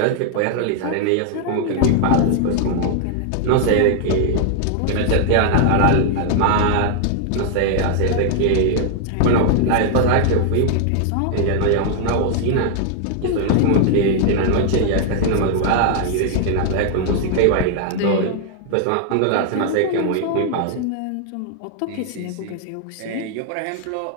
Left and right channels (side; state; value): both; different; correlation 0.00